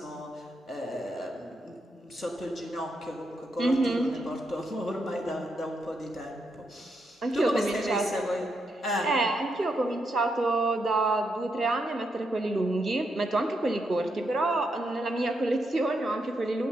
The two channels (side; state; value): both; normal; correlation 0.81